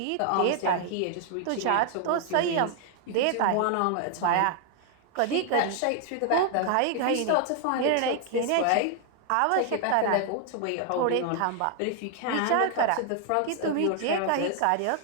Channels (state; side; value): different; both; correlation 0.00